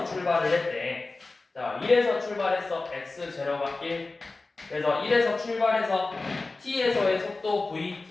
출발을 했대. 자, 1에서 출발해서 x0가 1. 그래서 1에서 출발해서 t에서의 속도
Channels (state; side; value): quieter; right; 3.5 dB